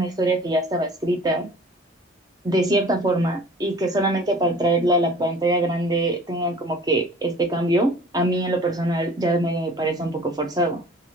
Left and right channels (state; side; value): normal; both; correlation 0.47